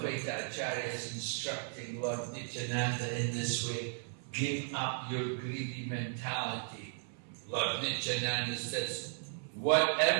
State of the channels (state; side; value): silent; left; 54 dB below the other